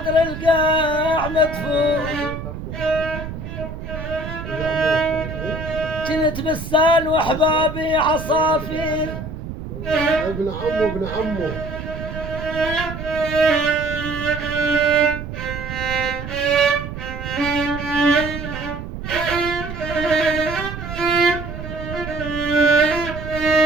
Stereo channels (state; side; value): noise; right; rumble, 8 dB below the sound